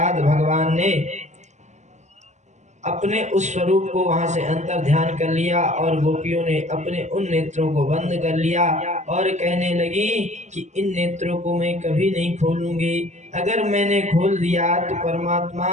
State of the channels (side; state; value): left; late; 0.34 ms